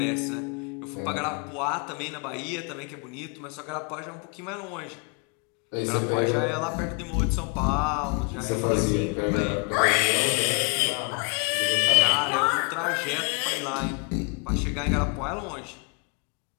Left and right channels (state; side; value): quieter; right; 36.0 dB